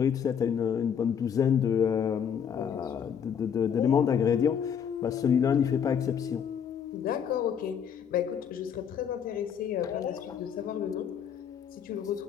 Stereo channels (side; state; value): right; quieter; 7.8 dB